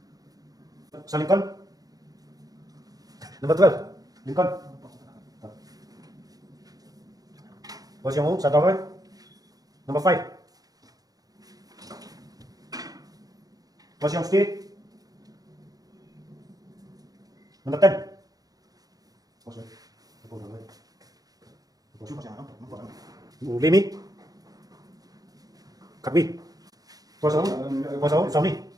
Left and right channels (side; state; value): left; late; 0.18 ms